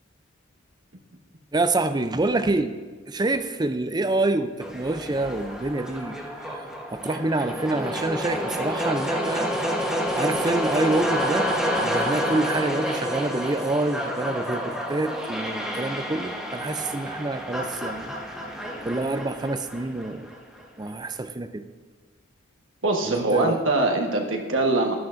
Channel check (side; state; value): both; normal; correlation 0.49